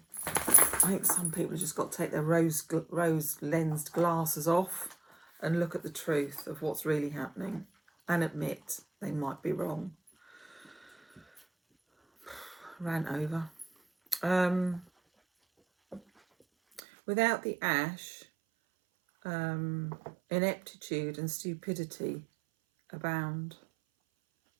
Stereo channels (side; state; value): left; drops out; at 16.8 s